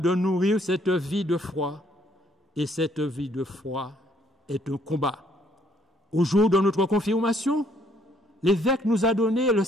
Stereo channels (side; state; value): both; normal; correlation 0.66